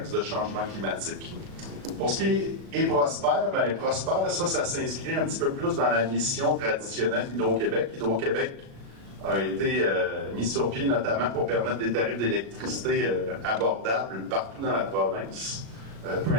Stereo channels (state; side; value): late; left; 36 ms